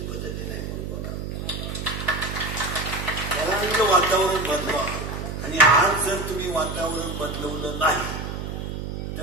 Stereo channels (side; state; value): right; noise; hum, 5 dB below the sound